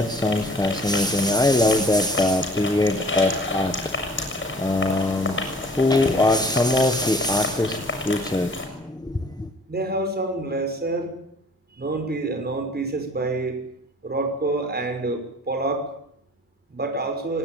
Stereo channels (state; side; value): normal; both; correlation 0.52